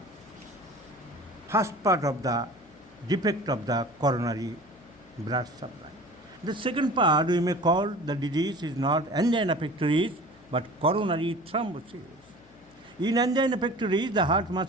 first part of the defect of the coronary blood supply. The second part we may call the disease is not angina pectoris but coronary thrombosis. In angina pectoris, the heart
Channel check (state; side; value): noise; left; hum, 27 dB below the sound